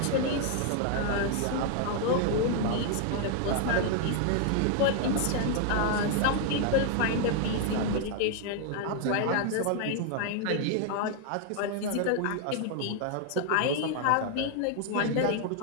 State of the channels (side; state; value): both; different; correlation 0.00